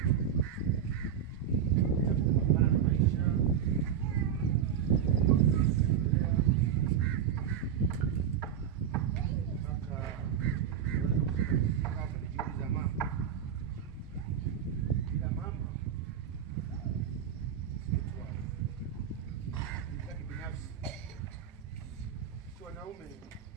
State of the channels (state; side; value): quieter; left; 8.7 dB